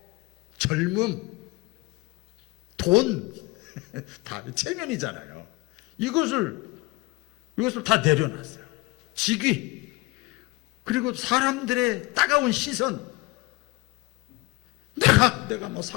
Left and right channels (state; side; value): quieter; right; 23.4 dB